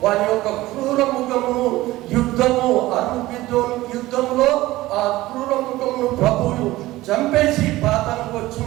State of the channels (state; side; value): quieter; left; 17.5 dB